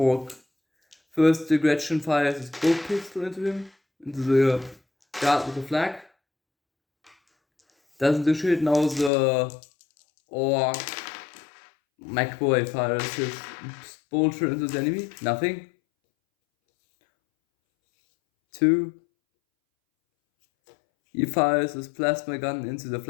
First, the Gretchen fires his bow pistol into him, into the Guard with the flag. Doesn't do shit. Now the Orc McBoy fires his bolter into the enemy. Nothing. 2. He fires his plasma gun into the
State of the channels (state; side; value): drops out; right; at 9.1 s